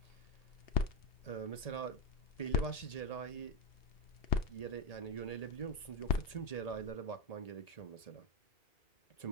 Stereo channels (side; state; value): right; late; 1.8 ms